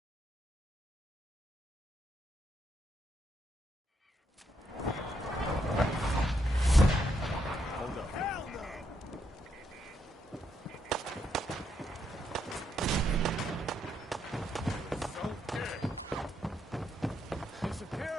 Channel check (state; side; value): normal; both; correlation 0.77